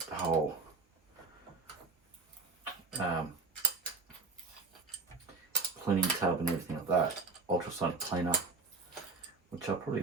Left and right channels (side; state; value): left; quieter; 4.0 dB